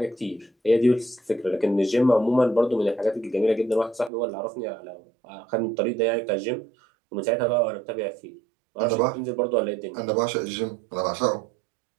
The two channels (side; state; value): left; drops out; at 4.1 s